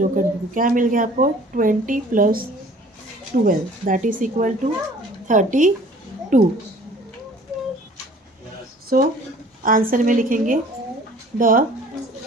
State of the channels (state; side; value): normal; both; correlation 0.51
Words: cut, देखो क्या मिल गया आपको, 20 plus 12 that is equal to 32। So answer में लिखेंगे the